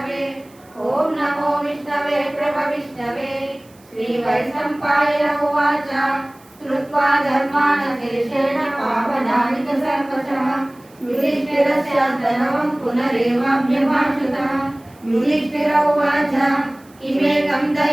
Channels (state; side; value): noise; right; hiss, 29 dB below the sound